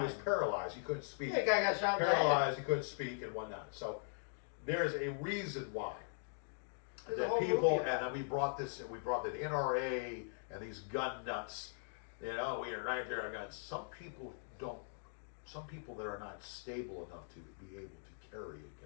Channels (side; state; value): right; silent; digital silence